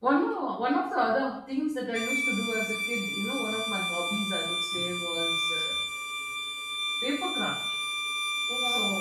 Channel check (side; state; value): both; identical; correlation 1.00